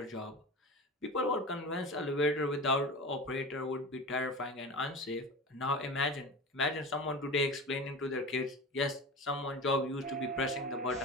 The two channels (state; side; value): normal; both; correlation 0.30